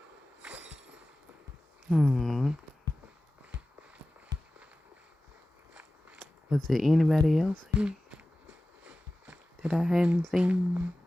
Was there anybody else here that I hadn't seen?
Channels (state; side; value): normal; both; correlation 0.96